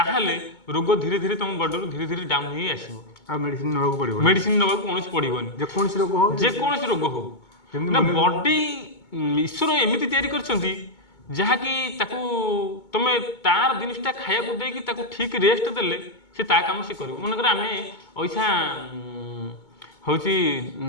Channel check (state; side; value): late; right; 2.2 ms